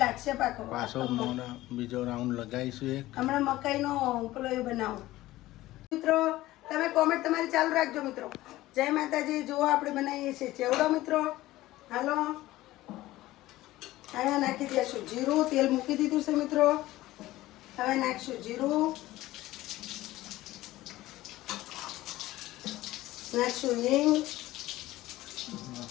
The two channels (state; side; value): quieter; right; 16.8 dB